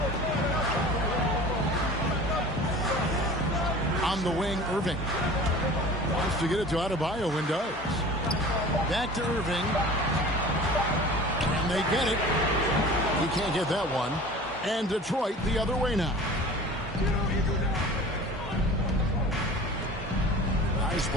On the wing, Irving. Wants to get it to Adebayo and does. Back to Irving. And they get it. He can't get that one. And Detroit the other way now. Nice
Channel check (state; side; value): normal; both; correlation 0.41